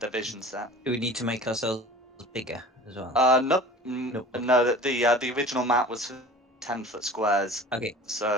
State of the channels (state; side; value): normal; both; correlation 0.42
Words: their vision set. Do we need to make ourselves bigger as well? Nope. Nope. No, that the original map was 10-foot squares, Okay.